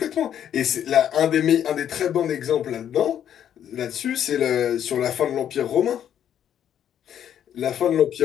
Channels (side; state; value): right; quieter; 9.8 dB